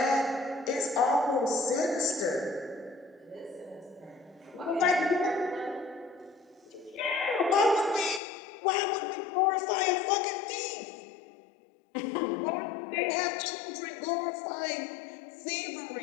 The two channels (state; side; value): drops out; right; at 8.2 s